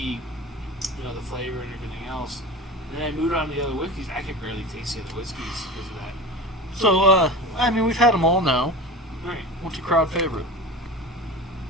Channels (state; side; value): normal; both; correlation 0.30